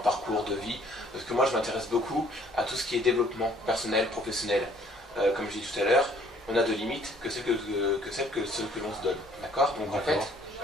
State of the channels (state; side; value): normal; both; correlation 0.60